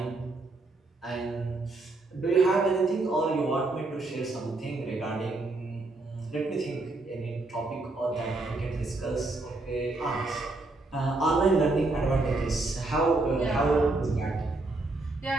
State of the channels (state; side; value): quieter; left; 3.1 dB